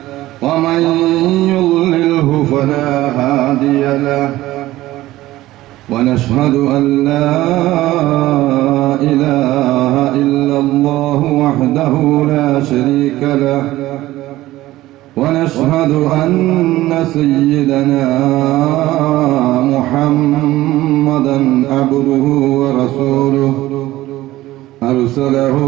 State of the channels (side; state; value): left; quieter; 16.4 dB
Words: ومن يضلله فلا هادي له ونشهد أن لا إله إلا الله وحده لا شريك له ونشهد أن سيدنا محمدا عبده ورسوله أرسله